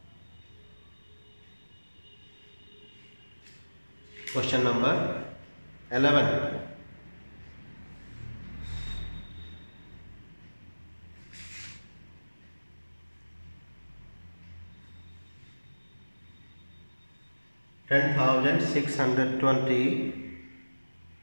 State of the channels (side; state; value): both; inverted; correlation -1.00